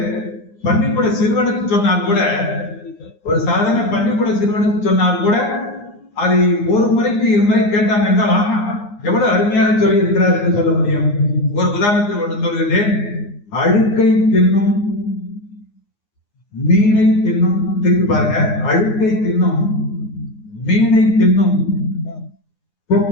பள்ளிக்கூட சிறுவனுக்கு சொன்னால் கூட, ஒரு சாதாரண பள்ளிக்கூட சிறுவனுக்கு சொன்னால் கூட அதை ஒரு முறைக்கு 2 முறை கேட்டாங்க என்றால் ஆஹா எவ்வளவு அருமையாக சொல்லி இருக்கிறார் என்று சொல்ல முடியும். ஒரு உதாரணத்தில் ஒன்று சொல்கிறேன். அழுக்கை தின்னும் மீனை தின்னும், திருப்பி பாருங்க, அழுக்கை தின்னும் மீனை தின்னும்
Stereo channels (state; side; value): late; right; 9.7 ms